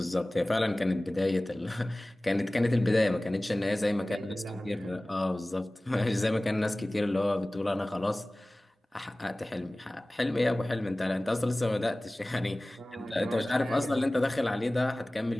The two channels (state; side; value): normal; both; correlation 0.98